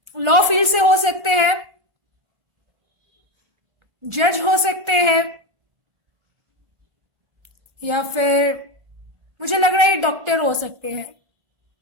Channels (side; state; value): left; late; 1.4 ms